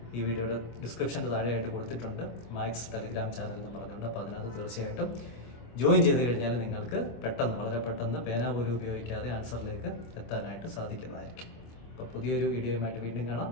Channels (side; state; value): right; late; 25 ms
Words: ഈ വീഡിയോയുടെ ഡിസ്ക്രിപ്ഷൻ്റെ താഴെയായിട്ട് കൊടുത്തിട്ടുണ്ട്, മാത്സ് ടെലഗ്രാം ചാനൽ എന്ന് പറഞ്ഞുകൊണ്ട്. അപ്പോൾ അതിനകത്ത് തീർച്ചയായിട്ടും ജോയിൻ ചെയ്ത് കഴിഞ്ഞാൽ നിങ്ങൾക്ക് വളരെ പെട്ടെന്ന് പേന പോലും ഉപയോഗിക്കാതെ ആൻസറിലേക്ക് എത്താനായിട്ട് സാധിക്കുന്നതായിരിക്കും. അപ്പോൾ പുതിയൊരു വീഡിയോയുമായിട്ട് വീണ്ടും കാണാം.